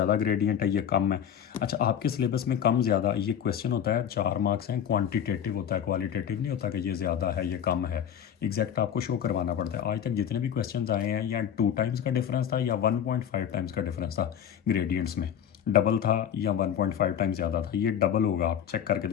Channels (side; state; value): right; quieter; 9.1 dB